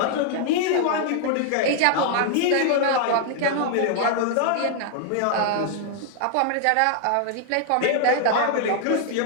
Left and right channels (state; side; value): different; both; correlation 0.00